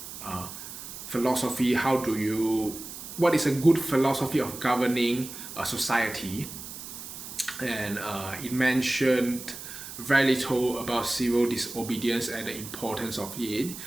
philosophy. What is a good philosophy of governing a society? And it mentioned very little about civil disobedience and the importance of it.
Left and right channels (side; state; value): right; noise; hiss, 11 dB below the sound